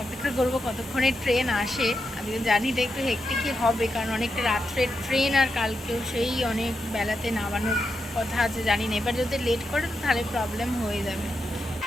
অপেক্ষা করব কতক্ষণে ট্রেন আসে। আমি জানি এটা একটু হেক্টিকই হবে, কারণ অনেকটা রাত্রের ট্রেন, আর কালকেও সেই অনেক বেলাতে নামানোর কথা আছে, জানি না। এবার যদি লেট করে তো তাহলে প্রবলেম হয়ে যাবে।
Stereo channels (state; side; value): normal; both; correlation 0.86